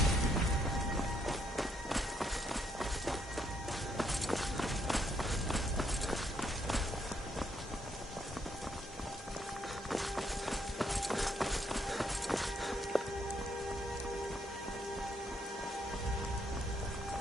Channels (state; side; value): normal; both; correlation 0.73